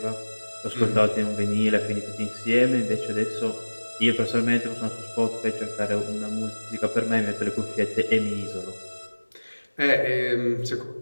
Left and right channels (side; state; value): both; inverted; correlation -1.00